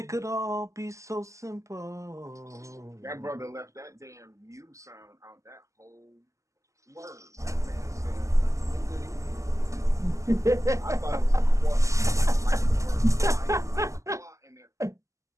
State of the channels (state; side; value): late; left; 0.15 ms